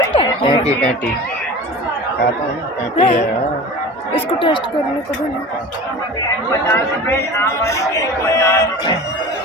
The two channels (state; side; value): normal; both; correlation 0.36